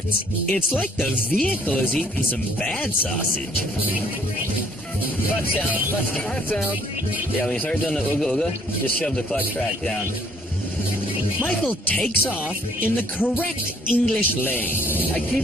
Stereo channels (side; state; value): both; normal; correlation 0.62